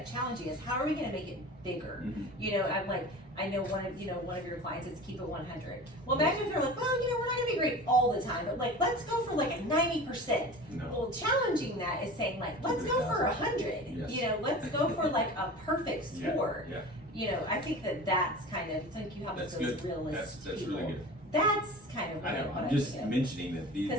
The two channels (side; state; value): both; normal; correlation 0.36